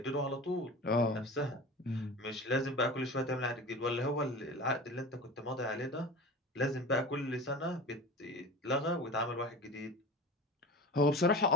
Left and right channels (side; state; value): both; normal; correlation 0.33